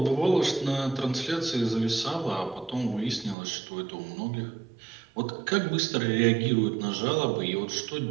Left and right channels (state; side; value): drops out; left; at 3.4 s